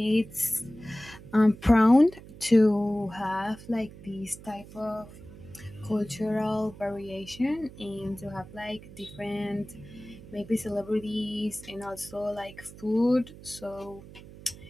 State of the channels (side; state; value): right; noise; hum, 17 dB below the sound